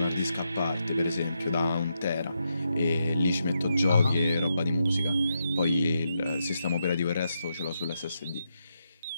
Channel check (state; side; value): inverted; both; correlation -0.83